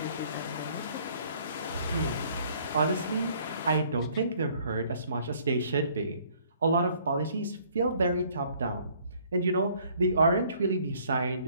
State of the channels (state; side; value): inverted; both; correlation -0.60